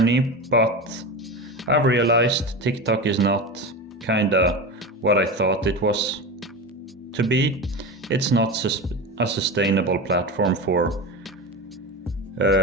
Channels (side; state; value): both; normal; correlation 0.24